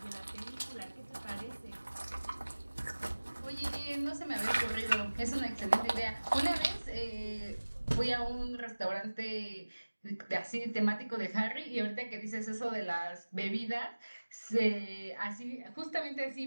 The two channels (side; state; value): both; inverted; correlation -1.00